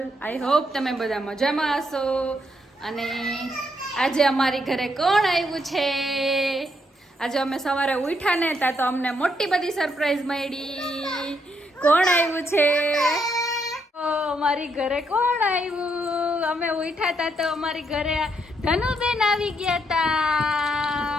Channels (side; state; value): both; normal; correlation 0.76